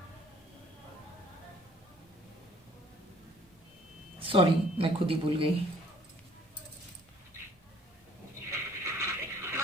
सॉरी मैं खुद ही भूल गई।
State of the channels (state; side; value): normal; both; correlation 0.58